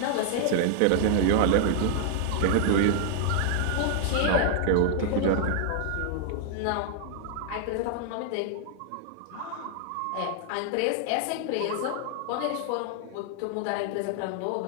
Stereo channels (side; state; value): both; different; correlation 0.00